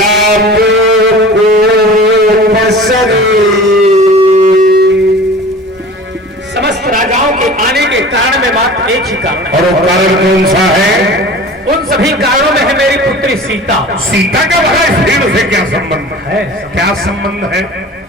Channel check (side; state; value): both; normal; correlation 0.40